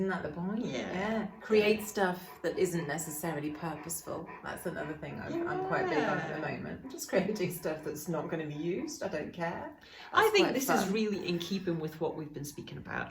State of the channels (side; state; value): both; identical; correlation 1.00